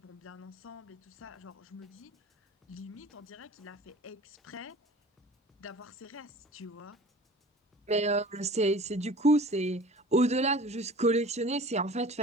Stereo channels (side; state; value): both; normal; correlation 0.43